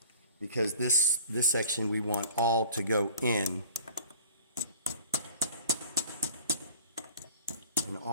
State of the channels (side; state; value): both; inverted; correlation -0.45